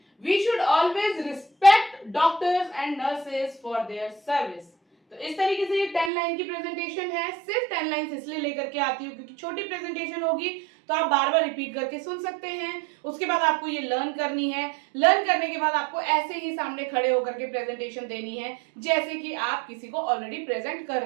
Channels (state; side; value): drops out; left; at 6.1 s